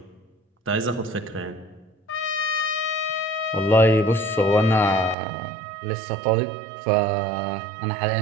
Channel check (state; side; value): drops out; left; at 5.2 s